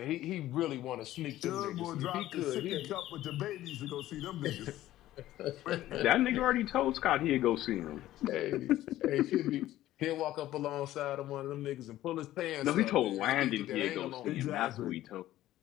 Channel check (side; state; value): right; quieter; 14.4 dB